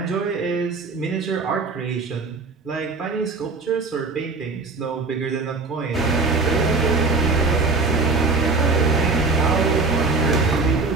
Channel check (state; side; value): quieter; left; 3.9 dB